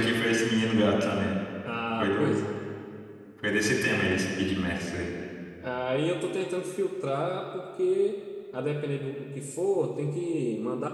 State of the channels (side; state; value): both; identical; correlation 1.00